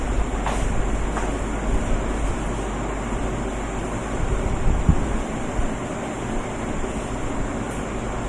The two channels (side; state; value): both; identical; correlation 1.00